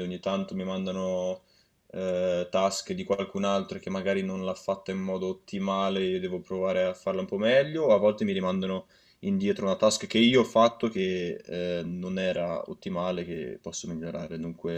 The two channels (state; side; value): identical; both; correlation 1.00